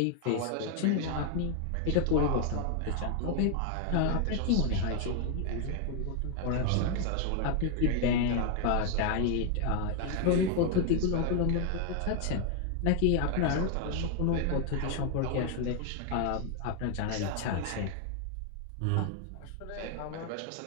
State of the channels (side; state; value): both; different; correlation 0.00